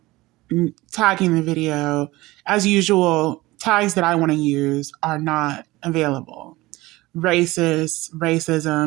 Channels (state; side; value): quieter; left; 19.8 dB